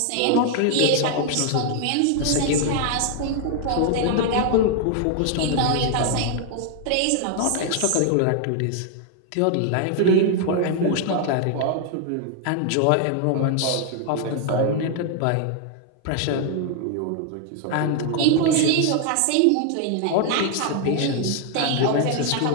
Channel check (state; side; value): different; both; correlation 0.00